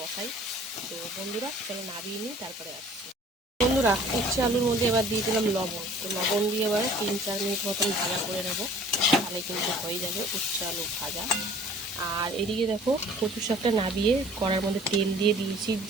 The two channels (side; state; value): both; normal; correlation 0.50